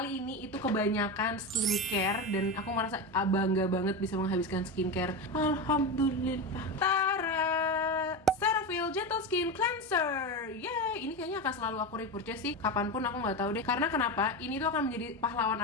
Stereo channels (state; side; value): normal; both; correlation 0.19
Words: ini itu kebanyakan skincare, dan aku merasa bangga banget bisa menghabiskan skincare. Alhamdulillah. Tara, Cetaphil Gentle Skin Cleanser. Yay, ini kayaknya akan selalu aku repurchase sih, kapanpun aku nggak tahu deh. Karena kenapa? Ini tuh akan menjadi pahlawan